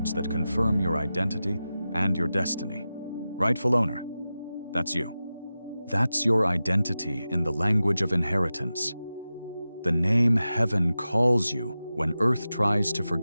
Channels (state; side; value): inverted; both; correlation -0.94